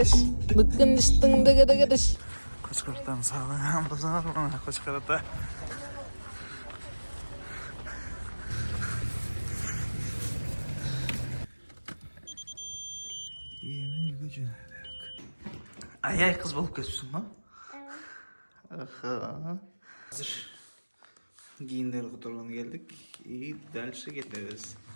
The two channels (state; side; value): inverted; both; correlation -1.00